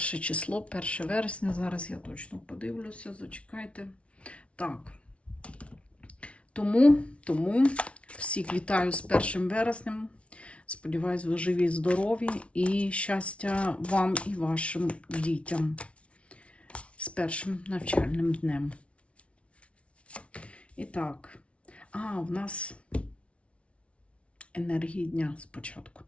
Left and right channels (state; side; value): late; right; 0.061 ms